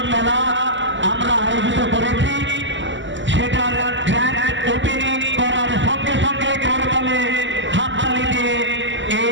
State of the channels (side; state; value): left; late; 0.54 ms